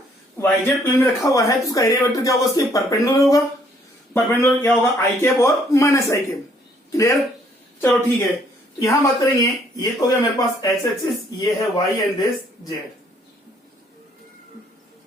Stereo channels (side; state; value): both; normal; correlation 0.65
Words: वाईजेड प्लेन में रखा हुआ है तो उसका एरिया वेक्टर क्या होगा, उसके परपेंडिकुलर होगा। परपेंडिकुलर क्या होगा, आई कैप और माइनस आई कैप। क्लियर? चलो ठीक है, तो यहां बात करेंगे, ये तो हो गया मेरे पास एक्स एक्सिस, ये है वाई एंड दिस जेड।